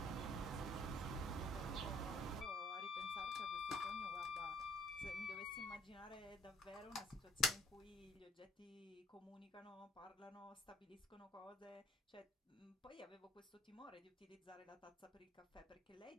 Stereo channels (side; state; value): both; normal; correlation 0.59